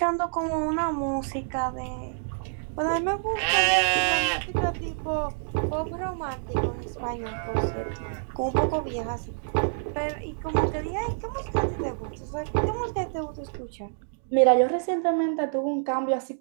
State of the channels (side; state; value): left; silent; digital silence